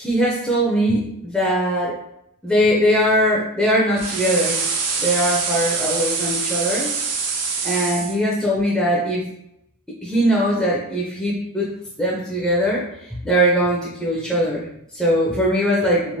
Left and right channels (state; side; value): normal; both; correlation 0.33